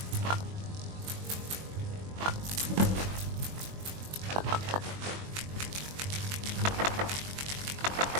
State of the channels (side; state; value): left; late; 21 ms